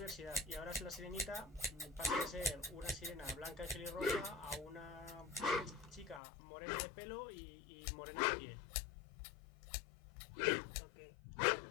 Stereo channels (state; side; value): drops out; right; at 6.2 s